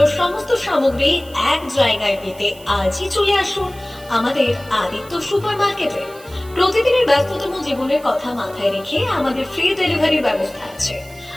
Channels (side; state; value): right; noise; hiss, 22 dB below the sound